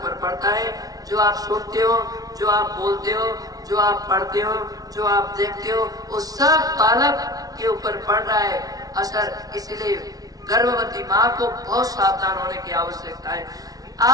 पर पड़ता है। जो आप सुनते हो, जो आप बोलते हो, जो आप पढ़ते हो, जो आप देखते हो, वो सब बालक के ऊपर पड़ रहा है असर। इसलिए गर्भवती माँ को बहुत सावधान होने की आवश्यकता है।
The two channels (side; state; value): left; late; 0.18 ms